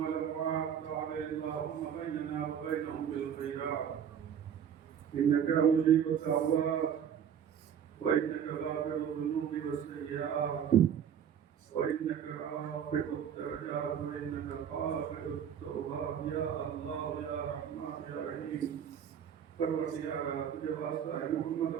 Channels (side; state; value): left; quieter; 8.5 dB